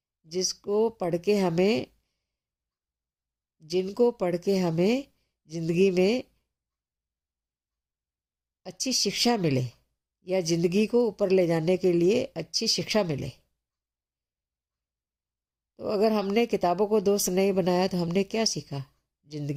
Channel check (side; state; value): both; identical; correlation 1.00